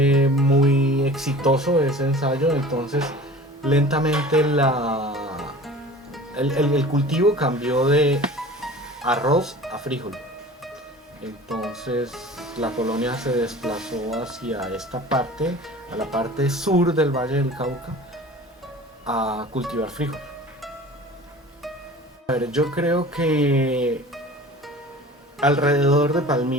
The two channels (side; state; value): both; normal; correlation 0.41